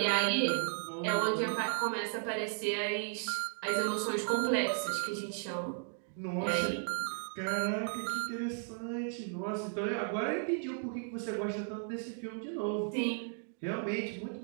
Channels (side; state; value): left; silent; 54 dB below the other